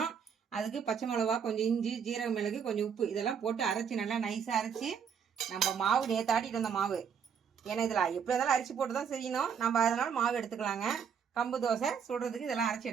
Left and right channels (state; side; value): quieter; left; 7.2 dB